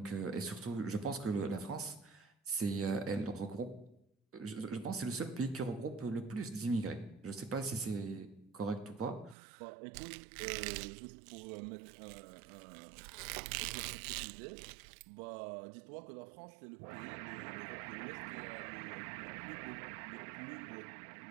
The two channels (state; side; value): drops out; left; at 9.3 s